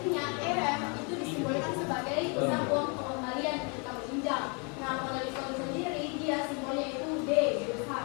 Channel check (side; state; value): right; quieter; 34.7 dB